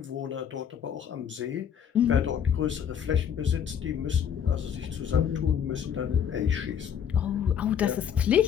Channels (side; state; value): right; quieter; 8.5 dB